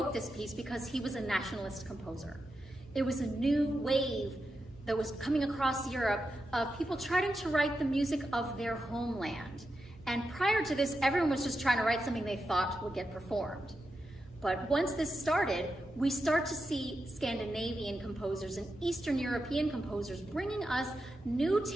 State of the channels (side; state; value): both; normal; correlation 0.88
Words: this piece because he was a nationalist composer. It was a new wave that was coming across Europe of people trying to write the music of their homeland. And prior to this, everyone was just trying to write something they thought would get performed. But once this started, we start to see Scandinavian composers and Eastern European composers bringing us new